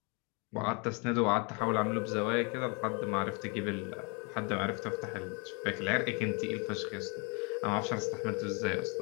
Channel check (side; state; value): right; quieter; 33.1 dB